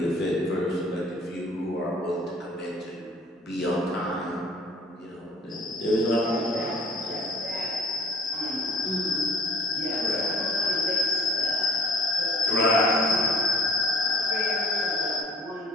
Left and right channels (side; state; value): both; normal; correlation 0.50